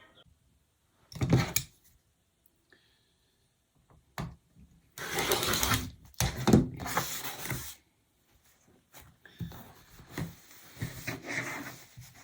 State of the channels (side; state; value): both; identical; correlation 1.00